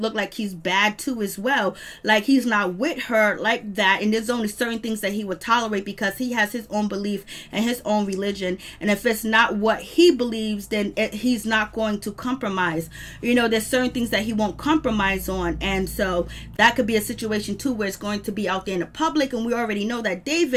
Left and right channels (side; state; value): both; identical; correlation 1.00